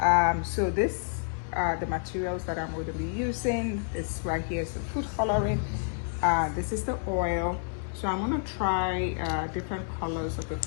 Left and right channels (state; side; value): silent; right; digital silence